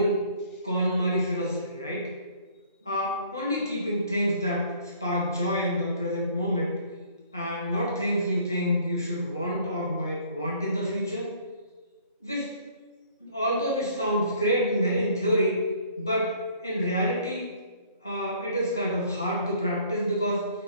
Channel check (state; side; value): inverted; both; correlation -0.57